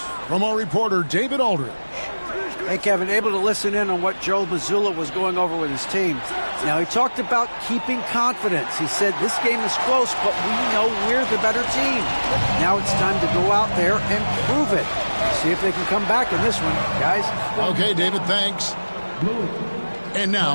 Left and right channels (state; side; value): inverted; both; correlation -1.00